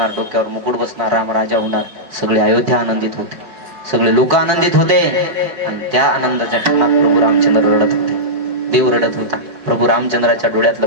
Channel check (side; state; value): left; late; 4.7 ms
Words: डोक्यावर मुकुट बसणार, राम राजा होणार. सगळे अयोध्या आनंदित होते, सगळे लोक आनंदित होते. आणि त्या आनंदाच्या क्षणात प्रभू रामचंद्र रडत होते, देव रडत होता. प्रभू रामचंद्राच्या डोळ्यातलं